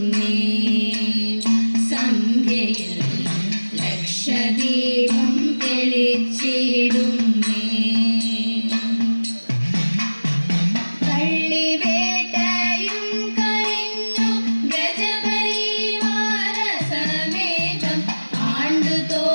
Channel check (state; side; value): inverted; both; correlation -1.00